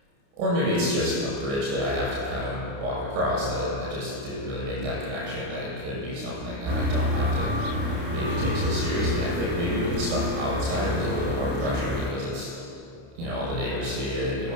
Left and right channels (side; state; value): left; late; 29 ms